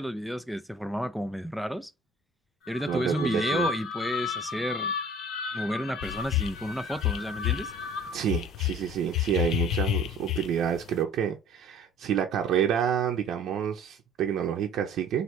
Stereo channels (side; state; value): both; normal; correlation 0.49